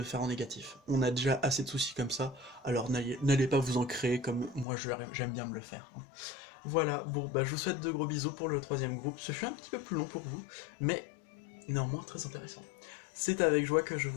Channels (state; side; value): drops out; right; at 4.7 s